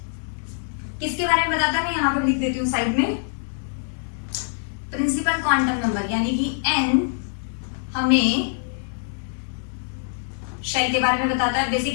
किसके बारे में बताता है, मैं यहाँ पर लिख देती हूँ साइड में, प्रिंसिपल क्वांटम नंबर, यानी कि n हमें शेल के बारे में बताता है।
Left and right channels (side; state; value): right; silent; digital silence